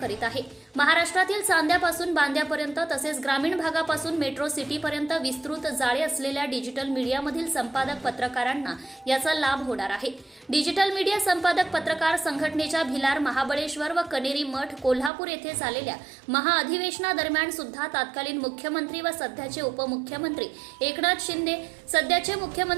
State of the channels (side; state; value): left; drops out; at 15.1 s